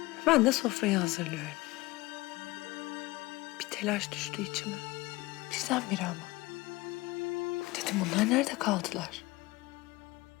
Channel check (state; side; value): quieter; right; 20.8 dB